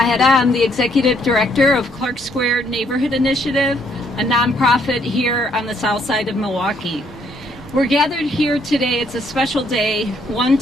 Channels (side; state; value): both; normal; correlation 0.69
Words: I'm the Executive Director of Clark Square Neighborhood Initiative, a nonprofit here on the south side of Milwaukee. We're gathered here today. It's a special day, one